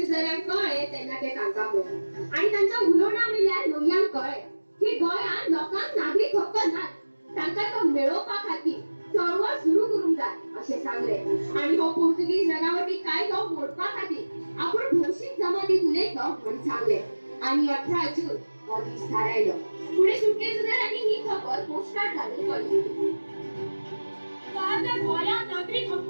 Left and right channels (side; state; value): both; inverted; correlation -1.00